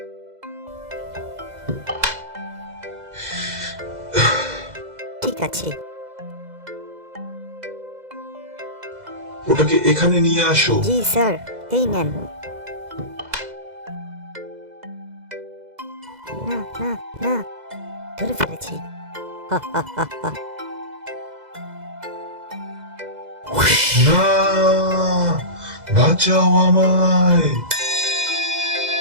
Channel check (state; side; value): late; left; 2.0 ms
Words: ঠিক আছে, ওটাকে এখানে নিয়ে আসো। জি স্যার, এই নেন। না না না, ধরে ফেলেছি। হা, হা, হা, হা। না, বাঁচাও আমায়,